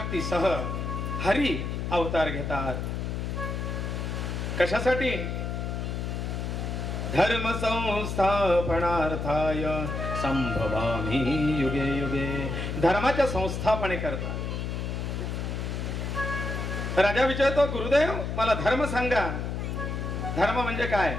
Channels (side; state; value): left; noise; hum, 3 dB below the sound